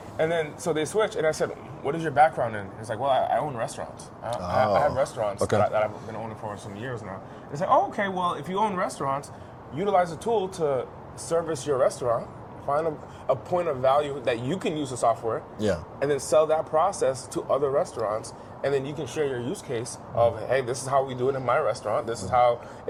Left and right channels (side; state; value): both; identical; correlation 1.00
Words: And then, so they switched, and I said, what is your background in? He's like, well, I own restaurants. I have restaurants that I've been owning for some years now. And I said, oh, okay, well, if you own restaurants, utilize a tool to service your restaurant, find a point of value that you can use the software, and then sell that process to other restaurants. And then you can share your use case of, hey, this is how we do it in my restaurant. This is how